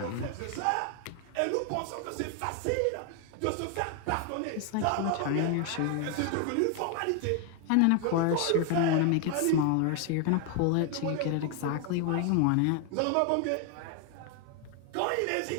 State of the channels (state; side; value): different; both; correlation 0.01